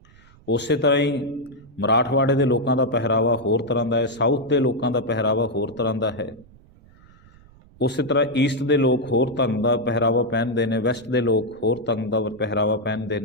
ਉਸੇ ਤਰ੍ਹਾਂ ਹੀ ਮਰਾਠਵਾੜੇ ਦੇ ਲੋਕਾਂ ਦਾ ਪਹਿਰਾਵਾ ਹੋਰ ਤਰ੍ਹਾਂ ਦਾ ਹੈ, ਸਾਊਥ ਦੇ ਲੋਕਾਂ ਦਾ ਪਹਿਰਾਵਾ ਹੋਰ ਤਰ੍ਹਾਂ ਦਾ ਹੈ, ਉਸੇ ਤਰ੍ਹਾਂ ਈਸਟ ਦੇ ਲੋਕ ਹੋਰ ਢੰਗ ਦਾ ਪਹਿਰਾਵਾ ਪਹਿਨਦੇ ਨੇ, ਵੈਸਟ ਦੇ ਲੋਕ ਹੋਰ ਢੰਗ ਦਾ ਪਹਿਰਾਵਾ ਪਹਿਨਦੇ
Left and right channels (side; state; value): right; noise; rumble, 26 dB below the sound